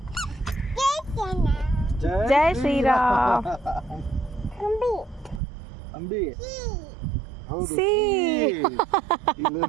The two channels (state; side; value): drops out; left; at 5.4 s